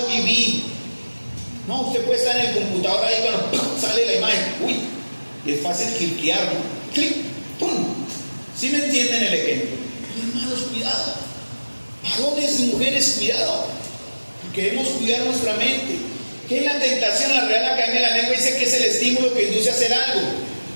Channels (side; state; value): both; inverted; correlation -1.00